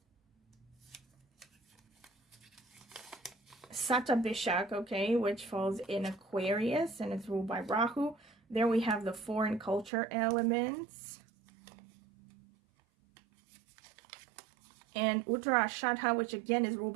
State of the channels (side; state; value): left; drops out; at 9.9 s